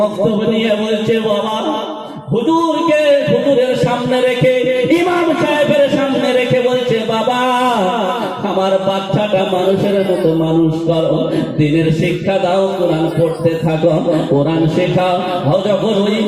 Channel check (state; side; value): identical; both; correlation 1.00